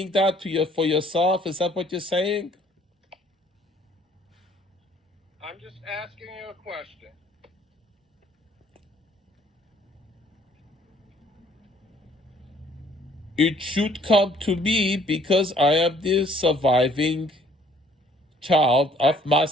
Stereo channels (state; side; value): normal; both; correlation 0.60